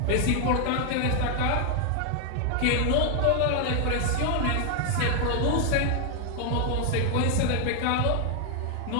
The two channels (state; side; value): different; both; correlation 0.00